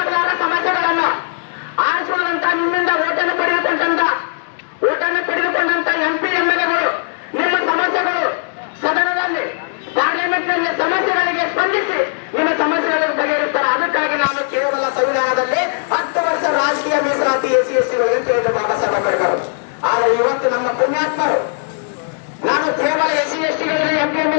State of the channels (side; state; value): right; silent; 68 dB below the other